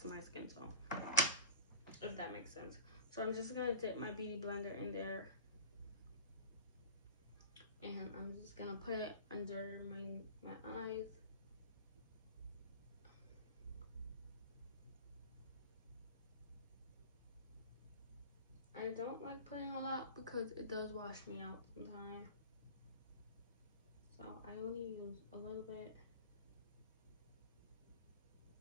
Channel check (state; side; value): inverted; both; correlation -0.37